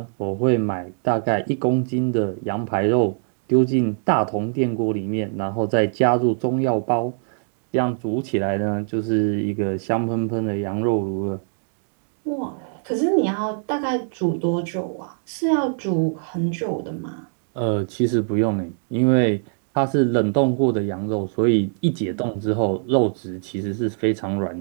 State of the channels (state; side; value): silent; left; digital silence